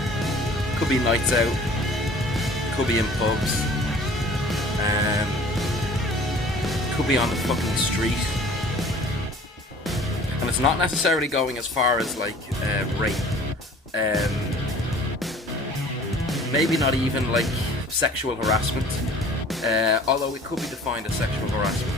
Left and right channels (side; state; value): both; normal; correlation 0.48